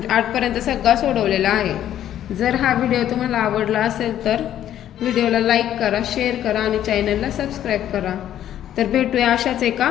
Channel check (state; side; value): quieter; right; 11.3 dB